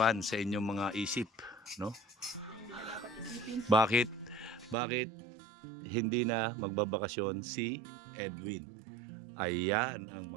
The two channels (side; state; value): left; drops out; at 4.8 s